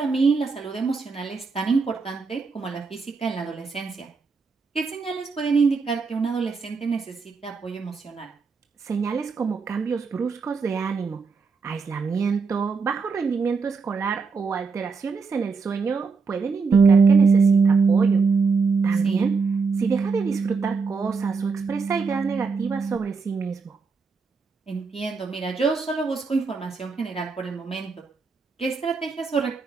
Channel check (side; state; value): left; quieter; 4.8 dB